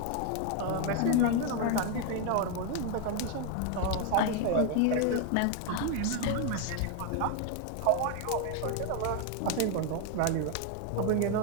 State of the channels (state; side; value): different; both; correlation 0.01